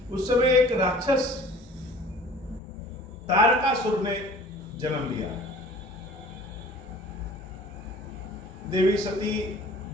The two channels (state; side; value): normal; both; correlation 0.47